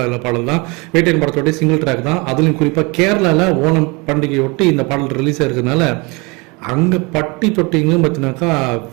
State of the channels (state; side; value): quieter; left; 27.7 dB